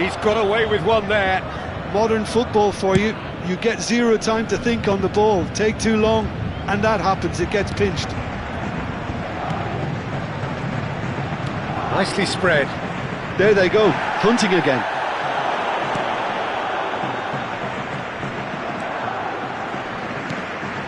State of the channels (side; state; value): both; identical; correlation 1.00